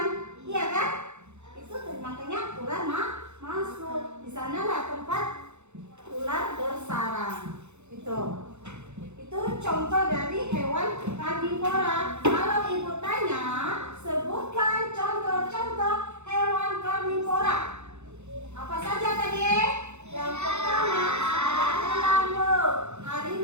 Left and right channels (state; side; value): late; left; 0.82 ms